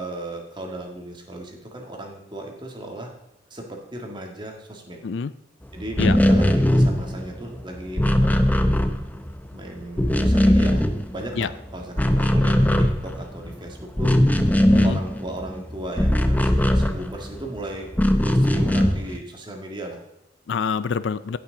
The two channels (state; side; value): normal; both; correlation 0.92